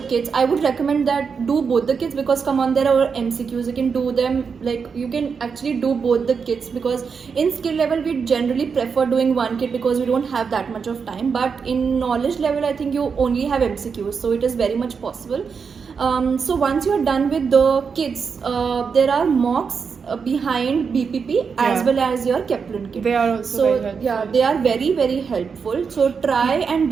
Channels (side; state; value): left; quieter; 5.8 dB